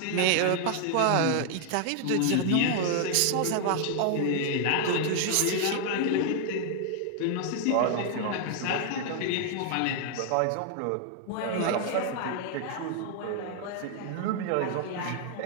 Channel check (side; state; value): both; different; correlation 0.00